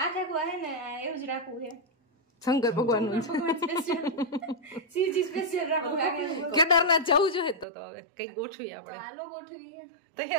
આખા કુવા હે ને એવું જ રાખવું છે. શંકર ભગવાન નું શિવજી સ્પેશિયલ રાખવું. કેદારનાથ જવું જોઈએ તો હવે કઈક ગોઠવી આપણે. હાલો ગોઠવી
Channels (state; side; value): drops out; left; at 7.7 s